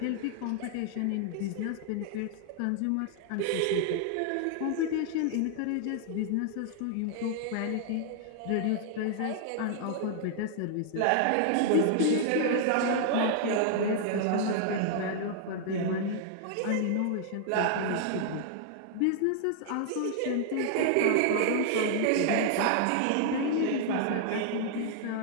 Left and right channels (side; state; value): both; different; correlation -0.01